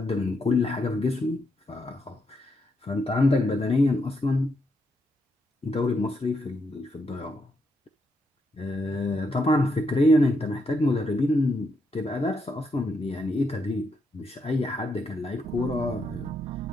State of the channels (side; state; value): both; normal; correlation 0.79